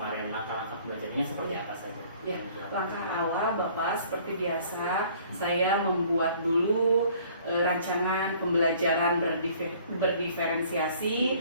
Langkah-langkah pembelajarannya seperti apa saja? Ya, langkah awal Bapak seperti biasa saya membuat dulu rancangan pembelajaran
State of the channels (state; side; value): inverted; both; correlation -0.55